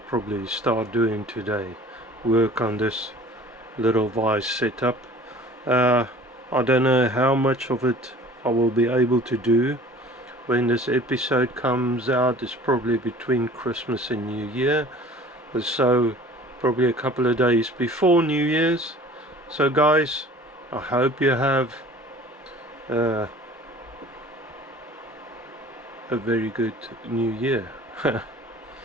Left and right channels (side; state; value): both; normal; correlation 0.46